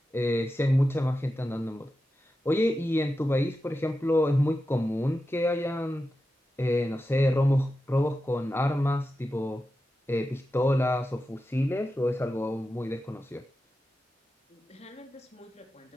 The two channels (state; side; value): normal; both; correlation 0.91